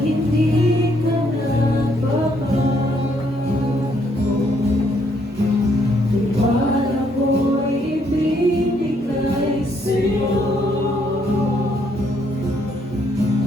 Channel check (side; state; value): both; normal; correlation 0.70